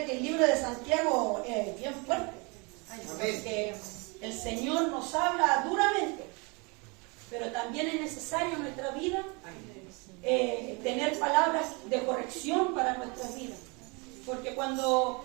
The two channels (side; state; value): left; quieter; 30.1 dB